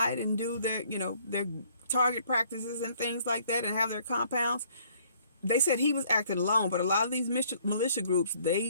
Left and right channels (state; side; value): inverted; both; correlation -0.61